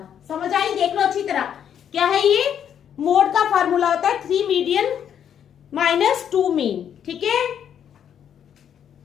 समझ आई? देख लो अच्छी तरह, क्या है ये मोड का फार्मूला होता है 3 मीडियन माइनस 2 मीन। ठीक है,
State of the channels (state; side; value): quieter; right; 9.0 dB